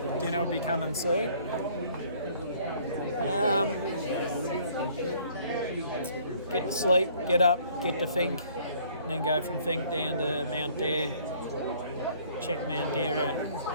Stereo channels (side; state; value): both; inverted; correlation -0.59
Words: Dinner will be coming soon. Get to sleep, get up, get to Fink, and then go from Fink down to Mount Dare. Check Mount Dare